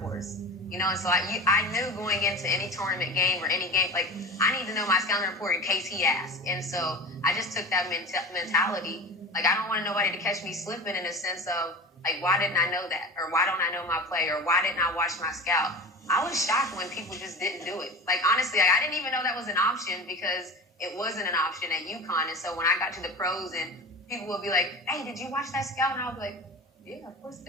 You know, and so I knew going into any tournament game or any game, like, I need to know my scouting report in case he asked. And so I just took that mentality. Like, I don't want nobody to catch me slipping in a sense of, like, why didn't I know that? Or why don't I know my play? Or why didn't I watch my scout? I was shocked when people just didn't do it. Like, honestly, I didn't even know that was an option because it wasn't an option at UConn. And so when I got to the pros and people would be like, hey, did you watch that scout? And I would be like, yeah, of course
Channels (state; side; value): normal; both; correlation 0.32